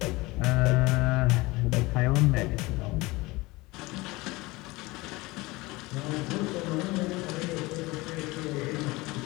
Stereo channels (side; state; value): right; quieter; 22.1 dB